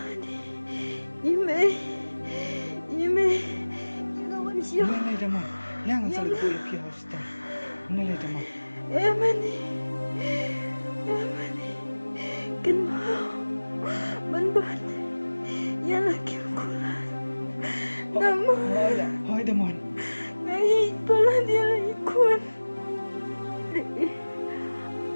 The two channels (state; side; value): inverted; both; correlation -1.00